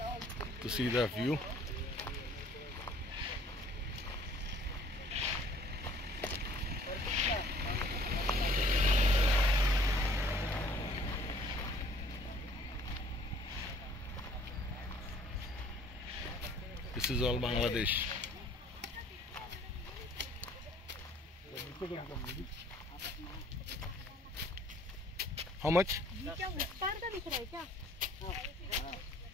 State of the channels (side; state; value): both; normal; correlation 0.56